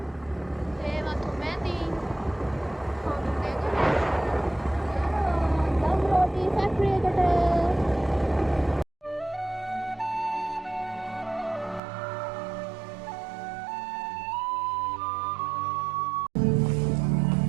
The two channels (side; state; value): left; drops out; at 11.8 s